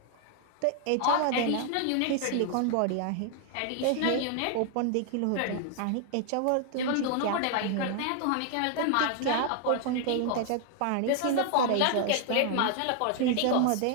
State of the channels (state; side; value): different; both; correlation 0.00